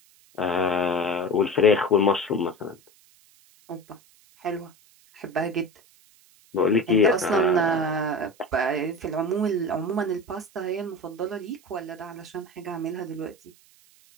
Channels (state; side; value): noise; right; hiss, 29 dB below the sound